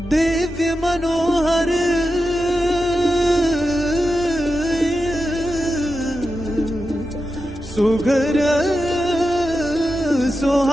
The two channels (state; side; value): normal; both; correlation 0.90